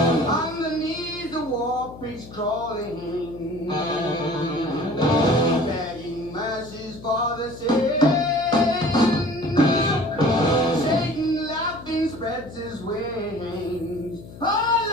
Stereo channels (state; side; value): noise; left; hum, 16 dB below the sound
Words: Underneath the warp is crawling, begging mercies for the sin. Satan laughing spreads his wings. Oh